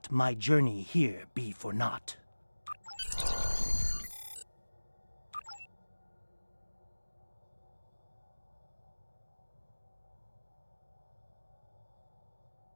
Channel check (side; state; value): both; inverted; correlation -1.00